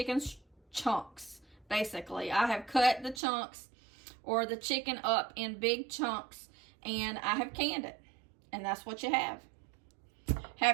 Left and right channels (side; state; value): left; drops out; at 3.2 s